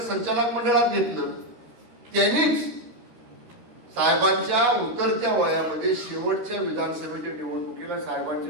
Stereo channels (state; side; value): late; left; 13 ms